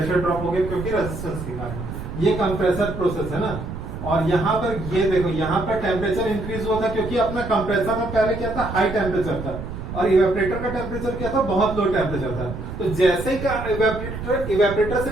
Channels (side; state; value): right; noise; rumble, 8 dB below the sound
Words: ड्रॉप हो गया क्योंकि रेजिस्टेंस के कारण, ये कंप्रेसर प्रोसेस है ना। और यहाँ पर ये देखो, यहाँ पर टेम्परेचर इंक्रीज हुआ था क्योंकि अपना कंप्रेसर में पहले क्या था, हाई टेम्परेचर था, और इवेपोरेटर का टेम्परेचर क्या था, बहुत लो टेम्परेचर था। तो जैसे ही इवेपोरेटर से